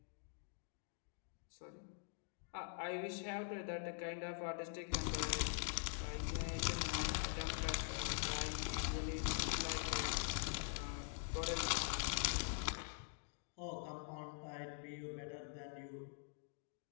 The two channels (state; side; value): silent; right; digital silence